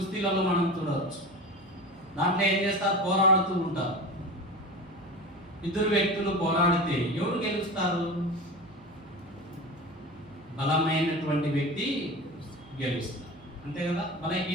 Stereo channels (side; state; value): right; noise; hum, 28 dB below the sound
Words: మనం చూడవచ్చు. దాంట్లో ఏం చేస్తారు? పోరాడుతూ ఉంటారు. ఇద్దరు వ్యక్తులు పోరాడితే ఎవరు గెలుస్తారు? బలమైనటువంటి వ్యక్తి గెలుస్తారు, అంతే కదా.